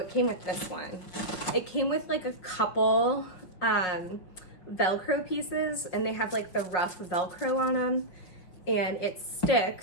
came with this one. It came with like a couple Velcro pieces, and they have like the rough Velcro on them, and it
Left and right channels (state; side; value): late; right; 5.5 ms